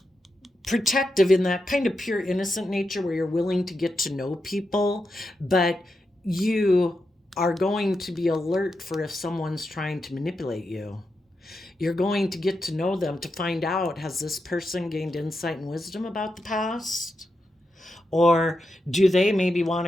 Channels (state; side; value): normal; both; correlation 0.87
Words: protective in that kind of pure innocent nature where you're willing to get to know people, but you are going to be alert for if someone's trying to manipulate you. You're going to get to know them to find out, has this person gained insight and wisdom about the past? Or do they maybe want